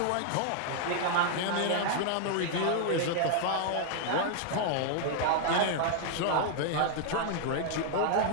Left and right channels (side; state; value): both; different; correlation 0.00